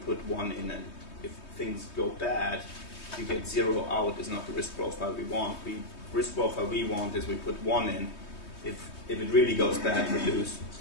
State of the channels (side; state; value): right; late; 3.2 ms